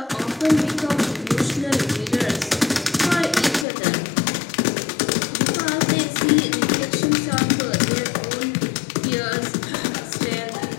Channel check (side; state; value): right; drops out; at 3.7 s